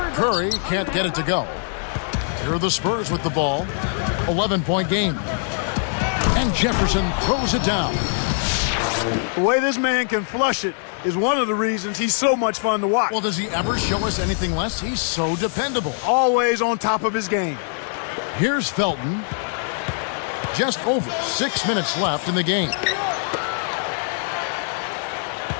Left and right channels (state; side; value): silent; right; digital silence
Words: Curry can't get it to go. Here are the Spurs with the ball. 11-point game. And Jefferson throws it down. The way this man can flush it is one of the reasons he's so much fun to watch. Well, does he ever show us anything less? He's so dependable. Always on top of his game. Here's Felton. Just over 6 minutes left in the game.